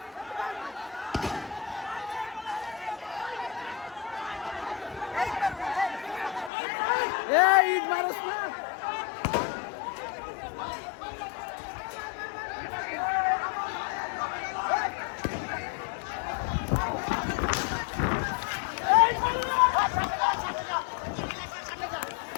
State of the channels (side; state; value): right; drops out; at 6.5 s